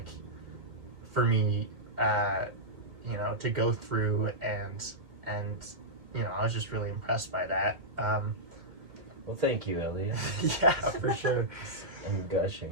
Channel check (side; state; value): left; late; 2.3 ms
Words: for me, to go through, and I was just really impressed by that. Well, thank you, Elliot. Yeah, for sure. I'm